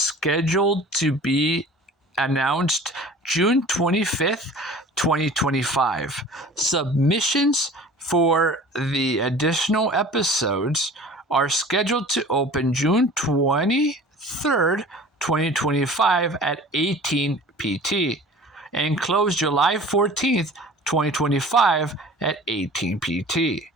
to be announced June 25th, 2025. Submissions for the additional episodes are scheduled to open June 23rd, 2025 at 18 PT and close July 14th, 2025 at 18 PT.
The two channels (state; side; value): normal; both; correlation 0.43